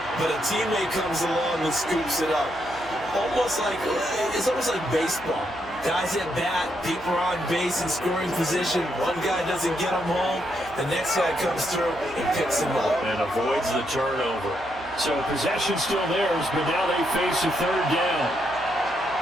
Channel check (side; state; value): right; noise; hum, 21 dB below the sound